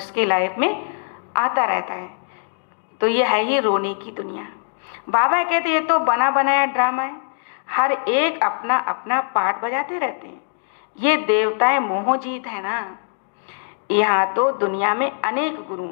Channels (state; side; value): silent; right; digital silence